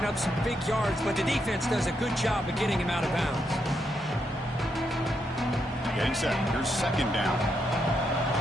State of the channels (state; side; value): normal; both; correlation 0.80